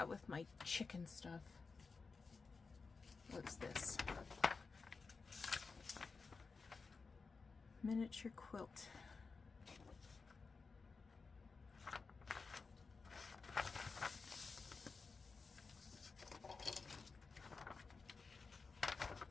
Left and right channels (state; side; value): quieter; right; 4.5 dB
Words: with my chicken stuff. What's this? Miniature quilt.